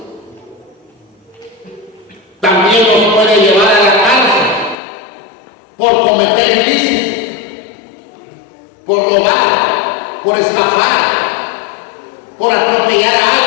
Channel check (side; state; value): right; drops out; at 4.8 s